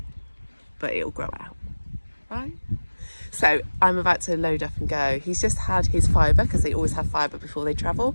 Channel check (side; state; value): both; inverted; correlation -1.00